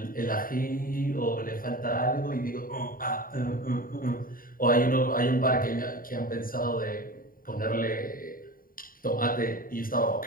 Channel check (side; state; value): right; late; 0.41 ms